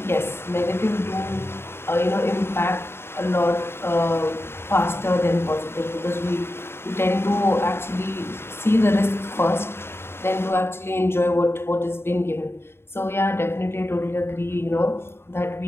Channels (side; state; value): right; late; 0.11 ms